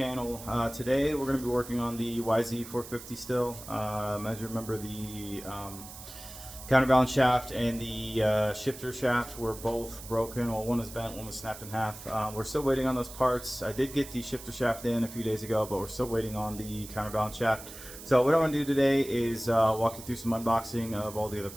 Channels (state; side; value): noise; right; hiss, 14 dB below the sound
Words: Today we're going to be working on the YZ450 still. As you remember, the counterbalance shaft and the shifter shaft were both broken. Well, one was bent, one was snapped in half. We're still waiting on those parts. I did get the shifter shaft in a few days ago, but we're still waiting on the counterbalance shaft. So what I want to do today is walk you through some unboxing of all the other